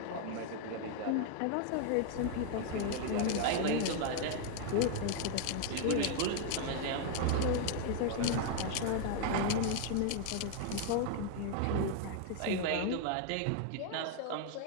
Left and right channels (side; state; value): both; different; correlation 0.00